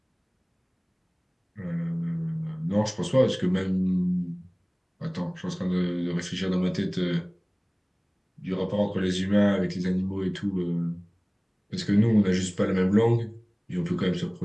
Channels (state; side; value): identical; both; correlation 1.00